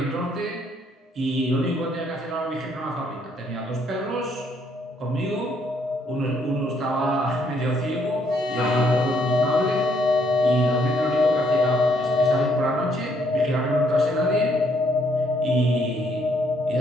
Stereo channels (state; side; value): normal; both; correlation 0.69